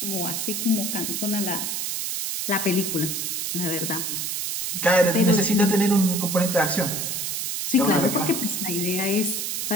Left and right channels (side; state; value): right; noise; hiss, 2 dB below the sound